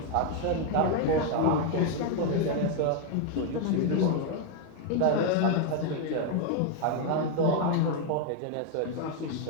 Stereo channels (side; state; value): both; different; correlation 0.01